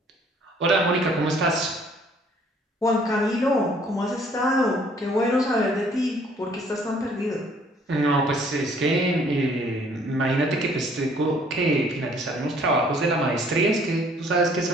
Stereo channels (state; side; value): normal; both; correlation 0.59